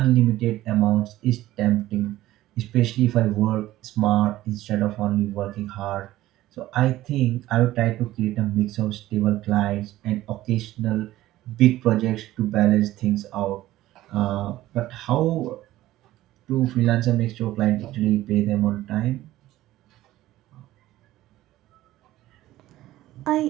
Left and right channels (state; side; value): quieter; left; 15.5 dB